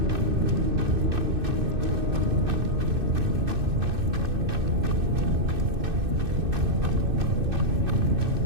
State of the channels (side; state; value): left; late; 2.6 ms